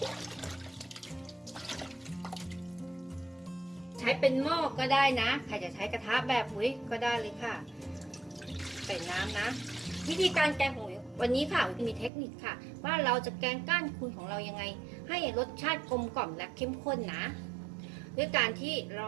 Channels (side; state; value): left; drops out; at 12.1 s